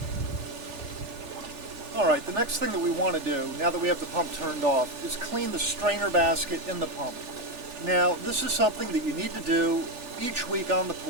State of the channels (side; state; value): left; late; 3.4 ms